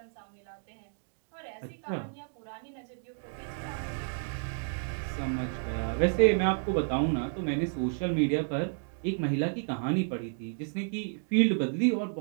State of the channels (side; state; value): left; silent; 57 dB below the other